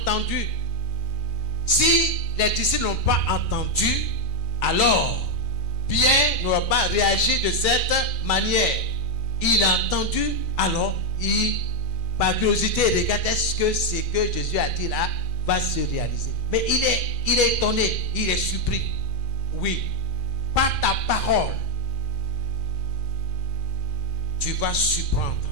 Si les disciples n'ont pas entendu, alors Pierre n'aura pas réagi de cette manière. Il a entendu, alors par curiosité, il regarde, est-ce que ce que Jésus a dit là va se réaliser? Mais il est étonné, il est surpris. Oui, par ta parole, tu vas surprendre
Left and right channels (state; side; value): late; right; 2.4 ms